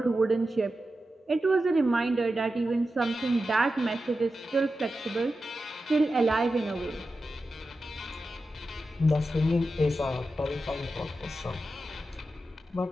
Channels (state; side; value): normal; both; correlation 0.91